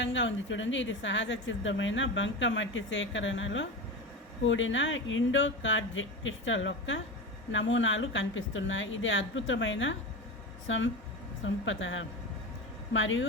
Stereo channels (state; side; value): normal; both; correlation 0.24